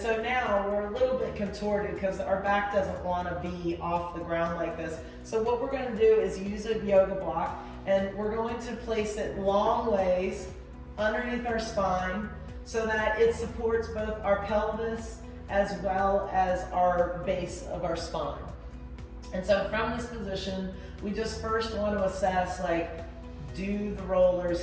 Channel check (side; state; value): both; identical; correlation 1.00